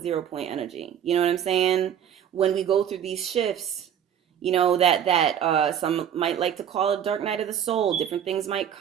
0 point energy. You know what I'm saying? When we go through these shifts, that some might like to call it dark night of the soul. Different things might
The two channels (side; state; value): left; quieter; 9.3 dB